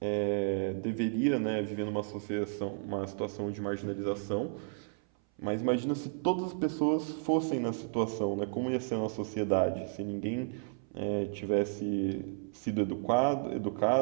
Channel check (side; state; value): left; silent; 56 dB below the other